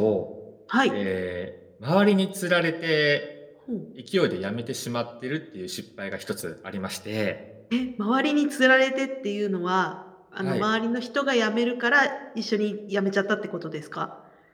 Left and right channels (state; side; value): identical; both; correlation 1.00